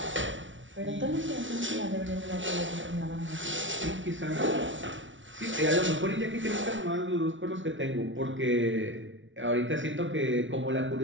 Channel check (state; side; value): late; left; 0.56 ms